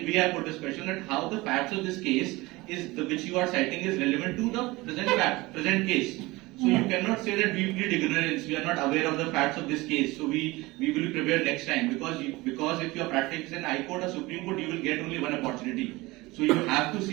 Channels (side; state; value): left; quieter; 21.4 dB